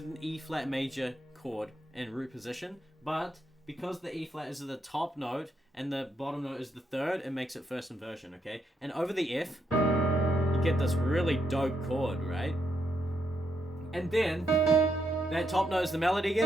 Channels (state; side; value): normal; both; correlation 0.79